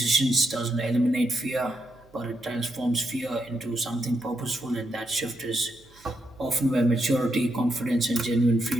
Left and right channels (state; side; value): noise; right; hum, 28 dB below the sound